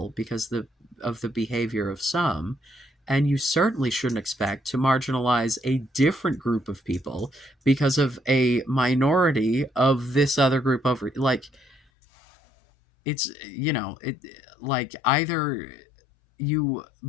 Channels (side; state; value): right; drops out; at 11.8 s